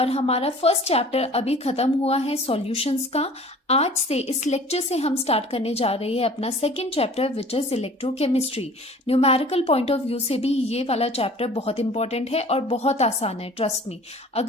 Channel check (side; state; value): both; normal; correlation 0.47